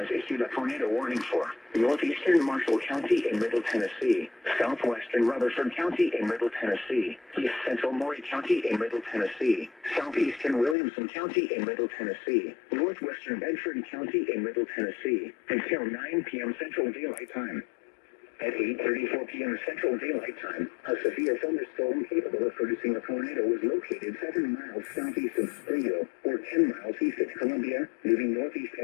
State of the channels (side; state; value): right; drops out; at 10.8 s